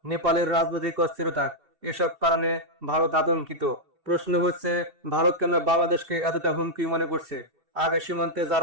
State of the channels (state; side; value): late; left; 2.7 ms